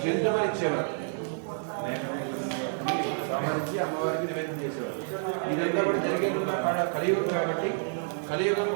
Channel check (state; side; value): silent; left; 59 dB below the other